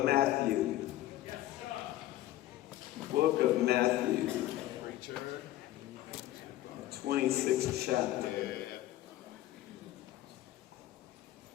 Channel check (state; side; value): quieter; right; 14.6 dB